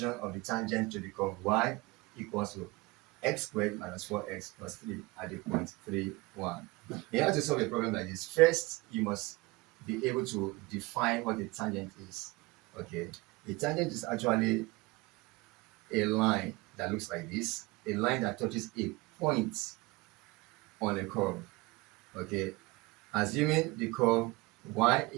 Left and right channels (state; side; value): quieter; left; 23.2 dB